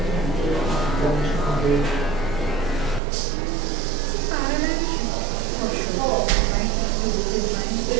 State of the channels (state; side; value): drops out; left; at 3.0 s